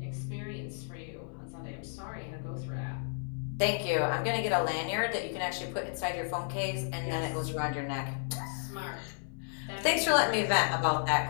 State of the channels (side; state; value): right; silent; 56 dB below the other